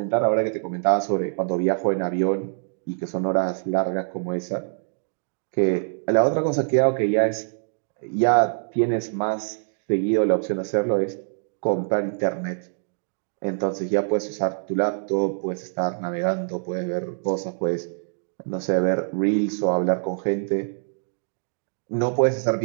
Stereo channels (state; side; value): silent; left; digital silence